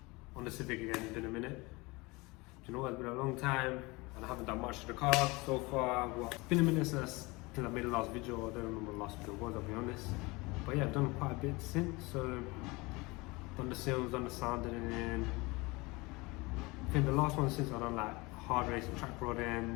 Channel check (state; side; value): quieter; right; 24.3 dB